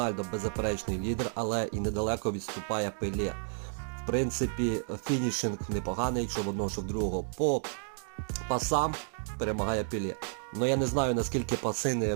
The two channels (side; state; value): left; silent; 57 dB below the other